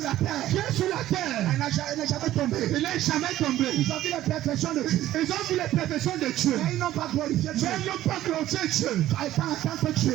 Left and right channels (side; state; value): left; quieter; 13.9 dB